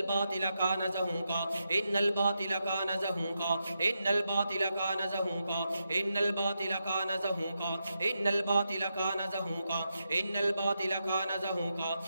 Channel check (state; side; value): inverted; both; correlation -0.86